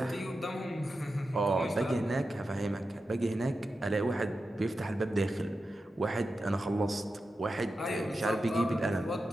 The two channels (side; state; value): both; normal; correlation 0.91